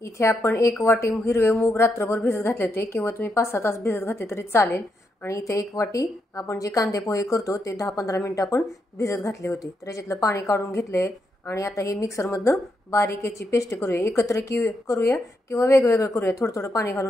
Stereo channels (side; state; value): both; normal; correlation 0.81